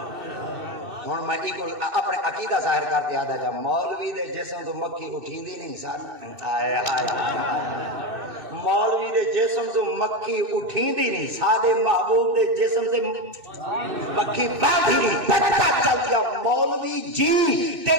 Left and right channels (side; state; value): left; late; 2.6 ms